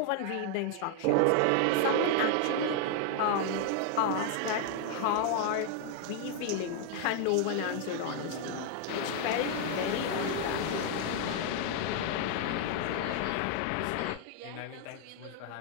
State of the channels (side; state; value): both; different; correlation 0.00